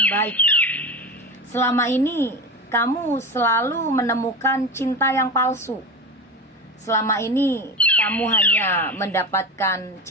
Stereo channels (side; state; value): both; normal; correlation 0.26